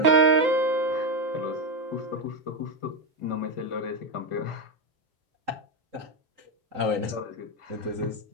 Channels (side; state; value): left; late; 3.8 ms